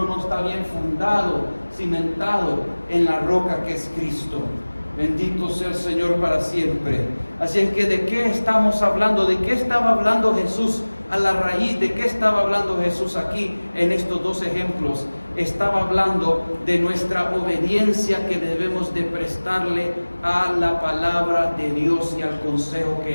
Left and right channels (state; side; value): inverted; both; correlation -1.00